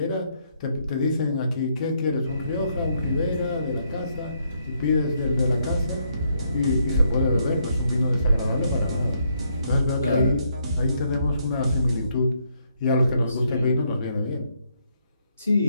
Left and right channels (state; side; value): inverted; both; correlation -0.74